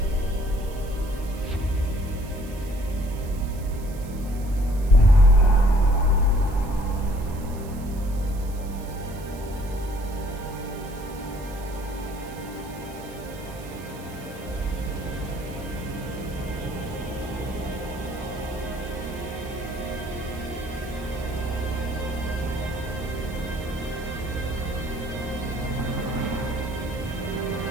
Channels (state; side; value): noise; right; hiss, 20 dB below the sound